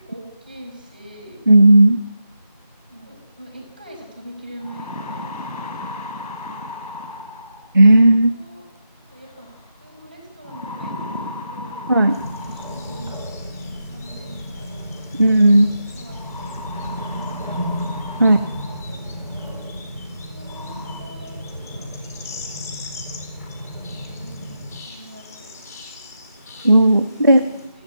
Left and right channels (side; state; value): both; inverted; correlation -0.87